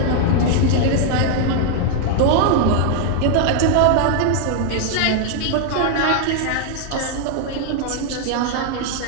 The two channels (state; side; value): different; both; correlation 0.00